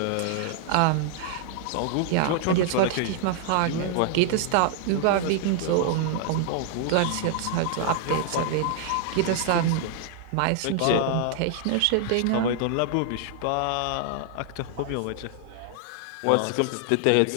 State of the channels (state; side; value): different; both; correlation -0.01